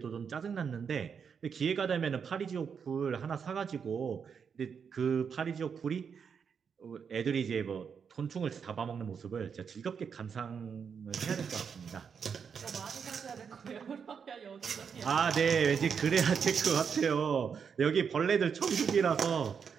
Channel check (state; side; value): quieter; left; 6.6 dB